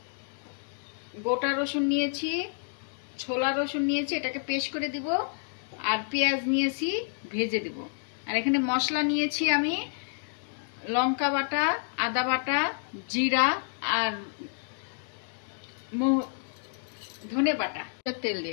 গোটা রসুন নিয়েছি, ছোলা রসুন নিয়েছি, এটাকে পেস্ট করে দিব। আর পেঁয়াজ নিয়েছি, ভেজে দিব। আর এখানে মশলা নিয়েছি আমি লঙ্কা বাটা, আদা বাটা, জিরা আর ধনে বাটা। তেল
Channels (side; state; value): right; silent; digital silence